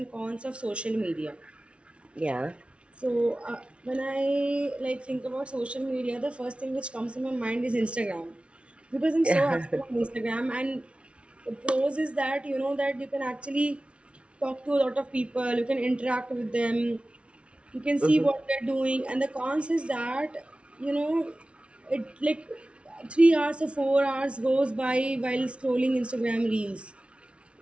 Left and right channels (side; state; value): left; late; 0.060 ms